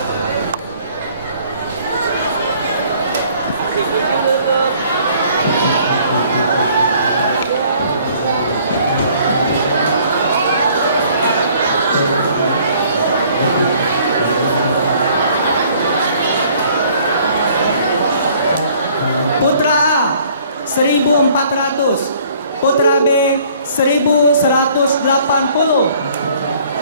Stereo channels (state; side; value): inverted; both; correlation -0.58